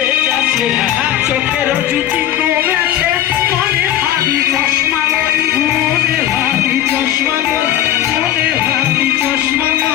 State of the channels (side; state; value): right; quieter; 12.1 dB